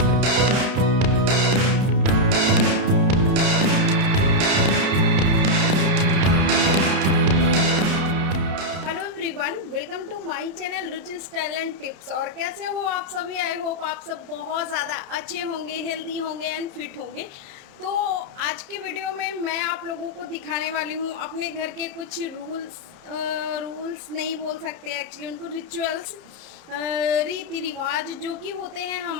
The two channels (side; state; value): left; late; 31 ms